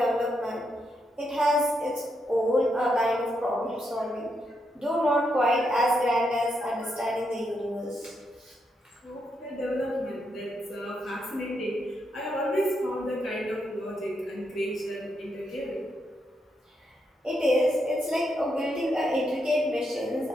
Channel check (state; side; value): normal; both; correlation 0.81